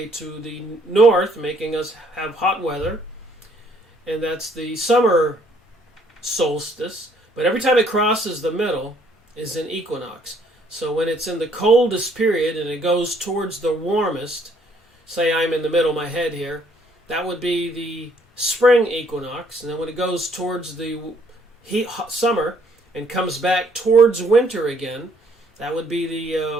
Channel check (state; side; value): normal; both; correlation 0.65